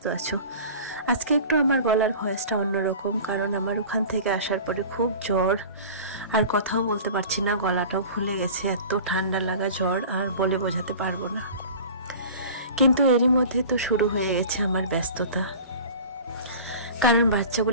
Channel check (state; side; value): inverted; both; correlation -0.39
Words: আছো। আজকে একটু আমার গলার ভয়েসটা অন্যরকম, কারণ আমার ওখান থেকে আসার পরে খুব জ্বর, আর কথাও বলতে পারছি না, গলাটাও ফুলে গেছে, এত ঠান্ডা লাগা জ্বর আর বলে বোঝাতে পারবো না। কিন্তু এরই মধ্যে তো শুরু হয়ে গেছে আমার ব্যস্ততা, কারণ